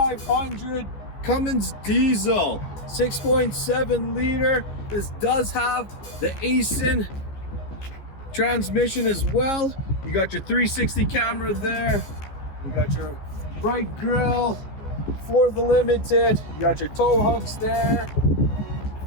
Cummins diesel, 6.7 liter. This does have the Aisin transmission as well. You got your 360 camera there. You got your bright grille for the Limited. You got your tow hooks there.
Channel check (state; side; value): late; right; 14 ms